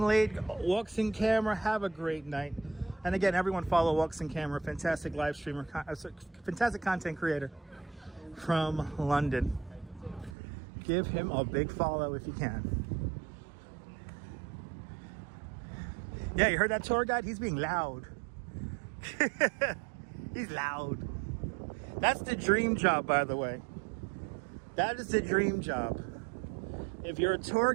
late. Walks in Camera, have a great night. And again, everyone follow Walks in Camera, fantastic live streamer, fantastic content creator from London. Give him a big follow if you can. Yeah, you heard that tour guide? He's being loud. He's loud. That's the dream job, by the way. That is the dream job. If you're a tour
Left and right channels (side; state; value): left; drops out; at 10.4 s